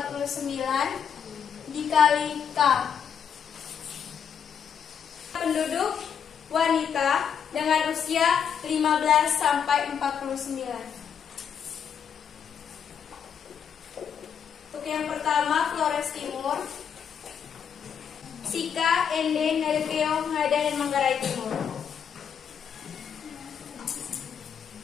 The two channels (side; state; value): right; quieter; 7.7 dB